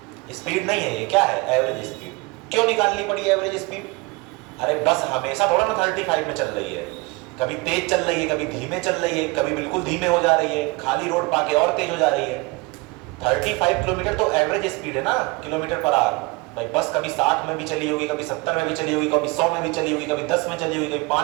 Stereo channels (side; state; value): left; quieter; 25.0 dB